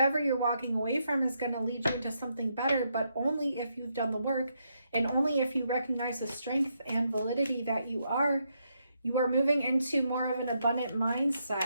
you're walking away from is going to lead you into something better, but only if you've done the work, and only if you recognize the strength and validity that you are moving into more of an abundant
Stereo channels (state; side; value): inverted; both; correlation -0.79